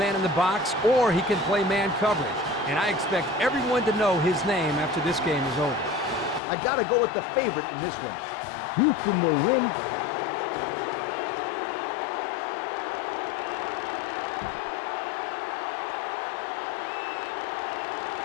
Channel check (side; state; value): right; drops out; at 6.4 s